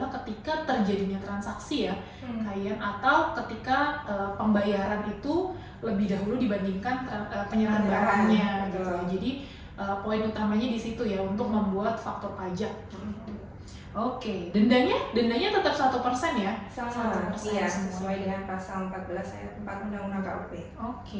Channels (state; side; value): identical; both; correlation 1.00